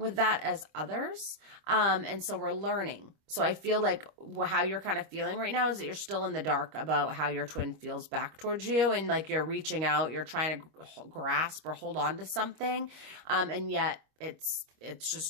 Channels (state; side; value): late; left; 25 ms